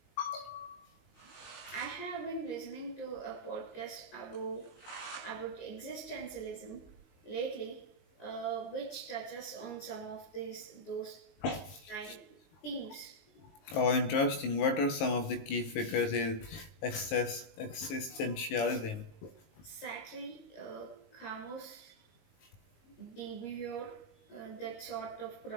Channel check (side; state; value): right; late; 19 ms